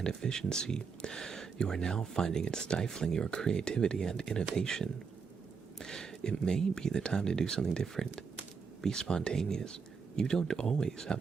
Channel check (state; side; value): quieter; left; 5.6 dB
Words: efficiency, you are now finding it stifling your creativity and innovation. It may be the time to do something different. Be spontaneous. You don't always